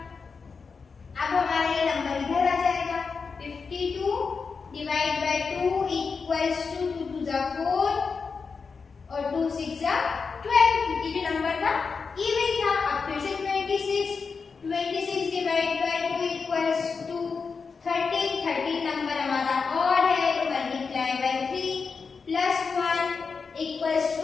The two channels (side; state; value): right; quieter; 5.1 dB